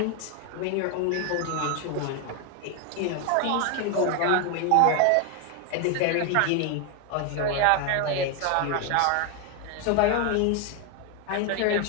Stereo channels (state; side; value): different; both; correlation 0.01